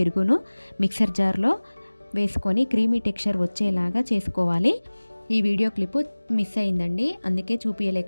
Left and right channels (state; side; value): inverted; both; correlation -1.00